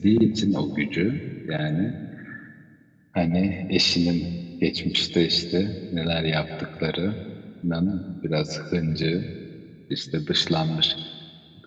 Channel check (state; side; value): identical; both; correlation 1.00